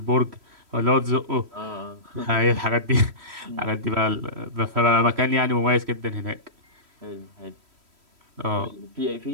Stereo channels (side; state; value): left; late; 3.1 ms